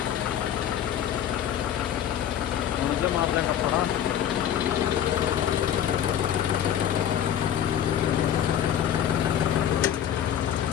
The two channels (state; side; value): quieter; right; 9.9 dB